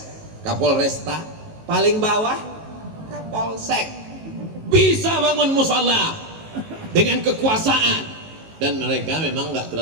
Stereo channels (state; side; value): late; left; 19 ms